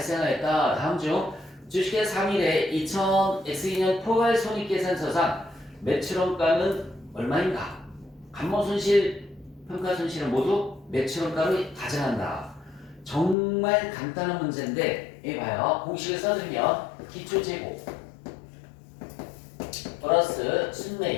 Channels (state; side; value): drops out; right; at 13.4 s